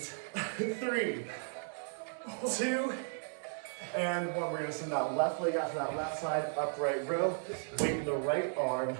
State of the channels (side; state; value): left; silent; 54 dB below the other